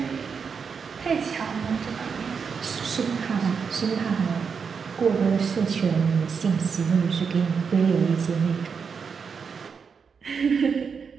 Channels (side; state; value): left; quieter; 6.0 dB